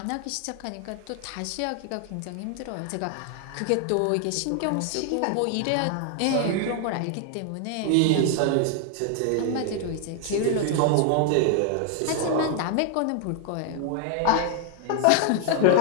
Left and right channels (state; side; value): different; both; correlation 0.00